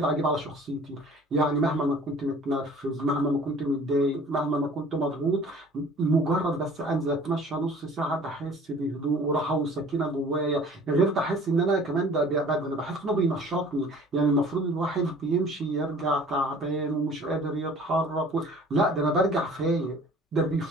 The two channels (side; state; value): both; normal; correlation 0.49